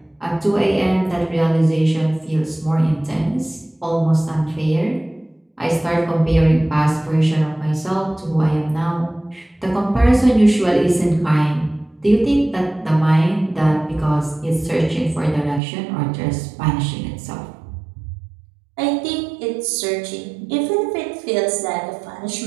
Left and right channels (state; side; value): drops out; left; at 15.6 s